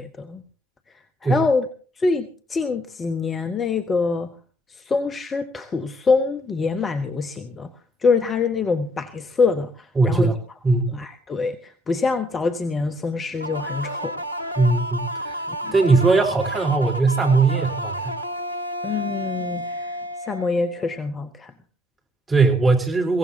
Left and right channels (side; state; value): both; normal; correlation 0.67